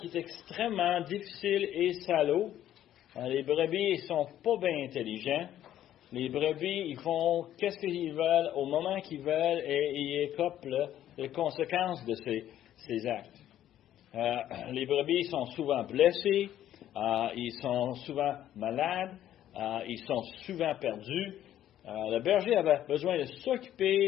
est extrêmement difficile et salaud. Les brebis, ils sont pas bien intelligents. Les brebis, ils font qu'est-ce qu'ils veulent au moment qu'ils veulent et ils écopent les conséquences de ces actes. Les brebis sont souvent blessés, ils sont souvent malades, ils sont souvent perdus. Le berger avait besoin de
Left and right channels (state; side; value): quieter; right; 11.8 dB